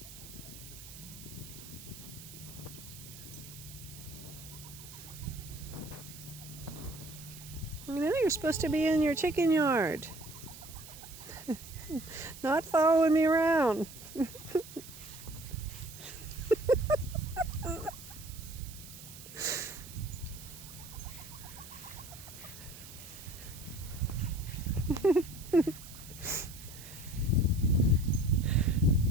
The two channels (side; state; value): right; noise; hiss, 15 dB below the sound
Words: know, you're supposed to be in your chicken yard. Not following me around.